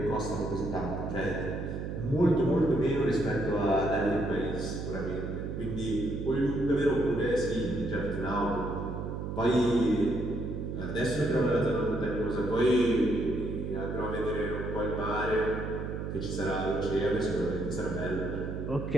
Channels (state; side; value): noise; right; hum, 5 dB below the sound